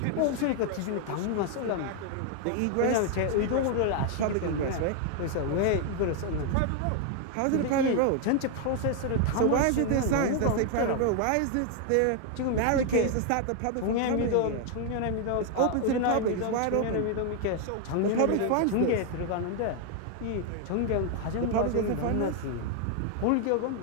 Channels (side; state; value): both; different; correlation 0.00